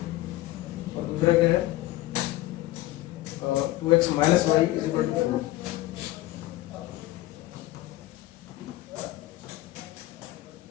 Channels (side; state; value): right; quieter; 16.8 dB